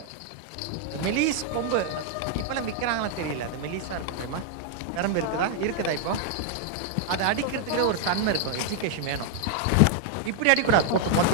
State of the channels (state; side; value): different; both; correlation 0.00